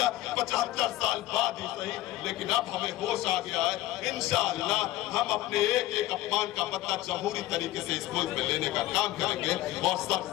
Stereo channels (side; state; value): right; quieter; 15.7 dB